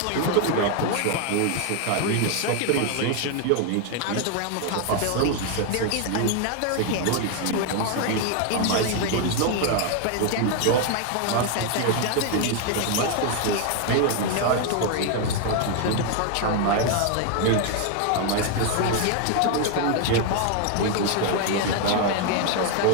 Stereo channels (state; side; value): different; both; correlation 0.01